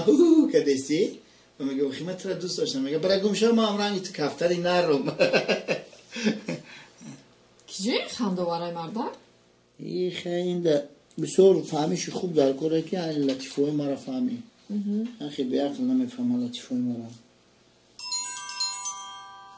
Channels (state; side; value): identical; both; correlation 1.00